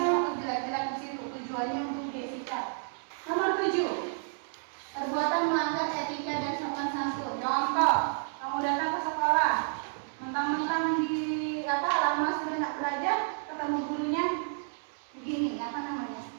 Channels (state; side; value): silent; left; digital silence